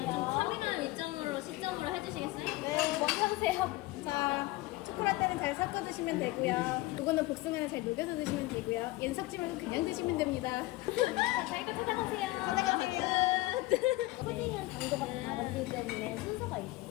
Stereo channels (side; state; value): right; quieter; 19.6 dB